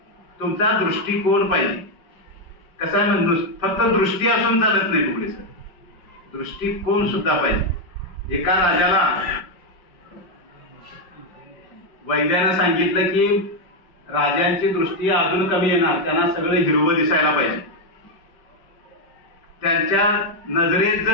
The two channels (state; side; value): late; right; 5.4 ms